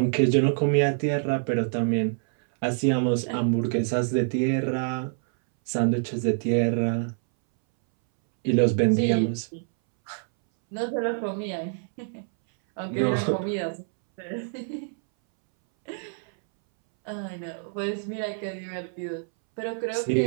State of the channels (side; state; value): left; silent; 61 dB below the other